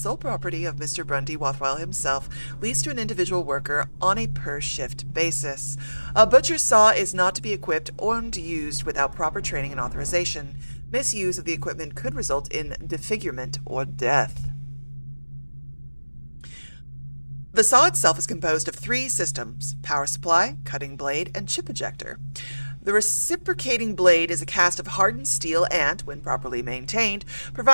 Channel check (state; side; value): inverted; both; correlation -1.00